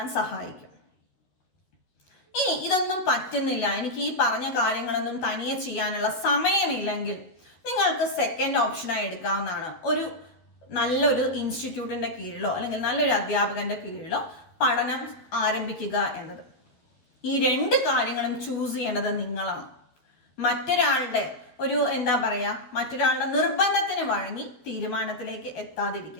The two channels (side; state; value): right; late; 12 ms